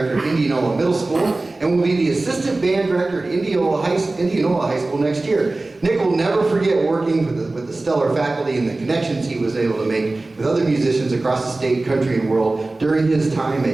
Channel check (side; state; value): left; quieter; 3.1 dB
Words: at Indianola Middle School, and will be the assistant band director at Indianola High School next year. Nick will never forget working with the stellar faculty and the connections he was able to make with other musicians across the state, country, and world during his time